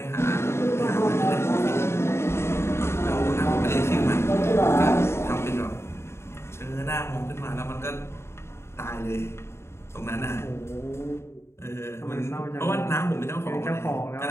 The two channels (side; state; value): right; late; 0.13 ms